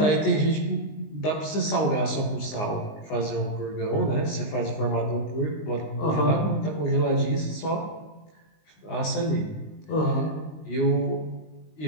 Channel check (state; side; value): late; right; 19 ms